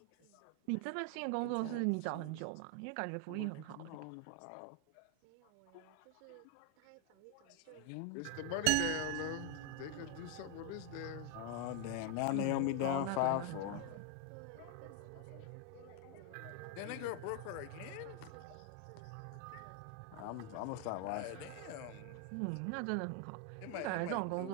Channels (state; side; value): different; both; correlation 0.00